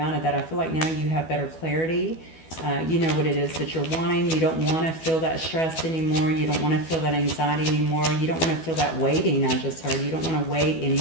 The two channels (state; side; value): late; right; 12 ms